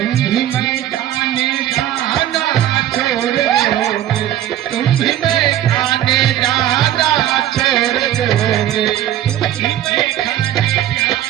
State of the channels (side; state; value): left; quieter; 12.1 dB